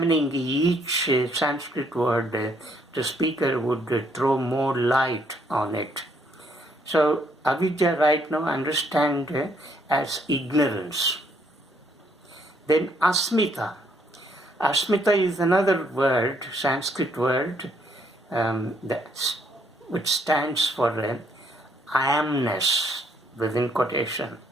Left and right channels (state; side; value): normal; both; correlation 0.69